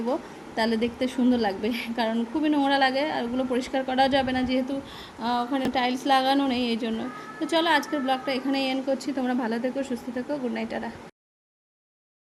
তাহলে দেখতে সুন্দর লাগবে, কারণ খুবই নোংরা লাগে, আর ওগুলো পরিষ্কার করাও যাবে না, যেহেতু ওখানে টাইলস লাগানো নেই, এই জন্য। তো চলো আজকের ব্লগটা এখানেই এন্ড করছি। তোমরা ভালো থেকো, সুস্থ থেকো, গুড নাইট, টাটা।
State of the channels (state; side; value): identical; both; correlation 1.00